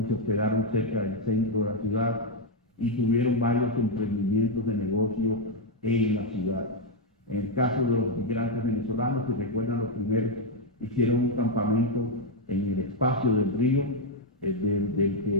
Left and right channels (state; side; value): normal; both; correlation 0.00